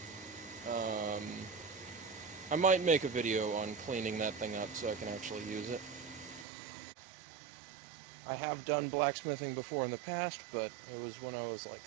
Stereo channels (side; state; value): left; drops out; at 6.5 s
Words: I might make a video on cleaning that thing up so I can actually use it. I have done blacksmithing before in the past, but it was when I was like